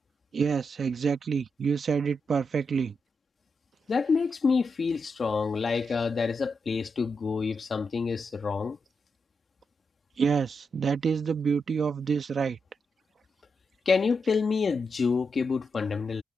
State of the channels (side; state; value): both; normal; correlation 0.84